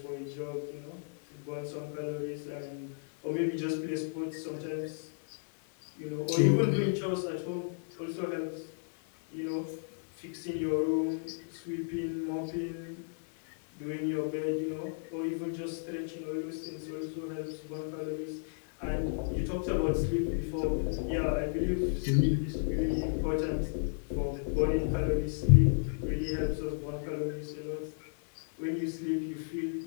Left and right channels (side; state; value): right; silent; digital silence